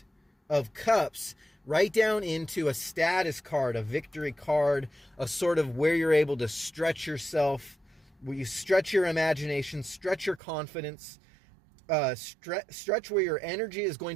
of Cups, right down into a status card, a victory card, a sort of where you're able to stretch yourself, where you stretch your imagination, stretch your confidence, stretch where your energy is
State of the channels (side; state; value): left; drops out; at 10.4 s